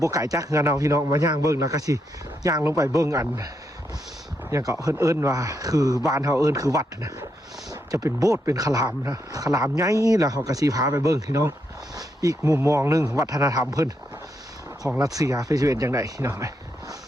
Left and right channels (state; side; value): normal; both; correlation 0.80